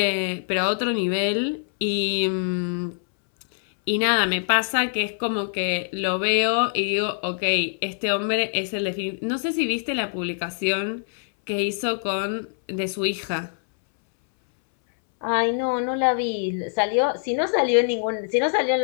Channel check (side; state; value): right; silent; 62 dB below the other